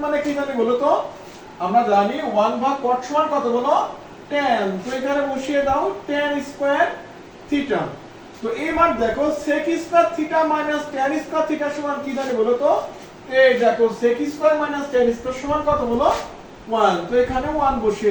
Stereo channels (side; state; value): both; identical; correlation 1.00